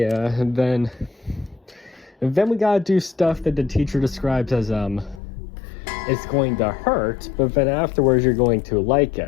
and then we gotta do stuff that the teacher describes as it's going to hurt, but then afterwards you're going to like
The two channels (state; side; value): drops out; right; at 5.2 s